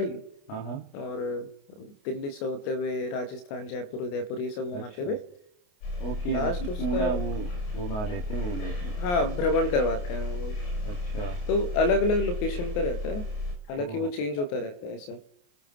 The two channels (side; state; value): right; late; 28 ms